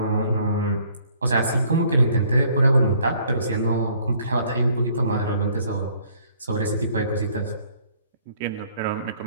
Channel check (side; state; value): both; inverted; correlation -0.61